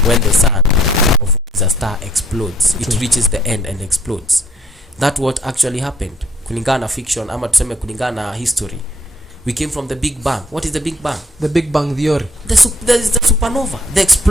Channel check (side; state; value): both; normal; correlation 0.63